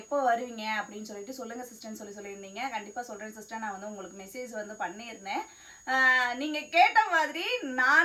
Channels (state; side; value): identical; both; correlation 1.00